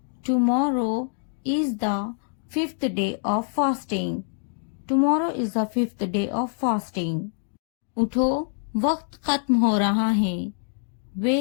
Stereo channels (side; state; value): right; silent; digital silence